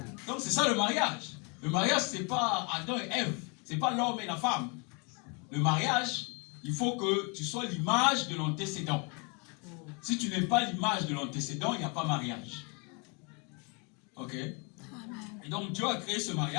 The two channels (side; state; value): right; quieter; 31.1 dB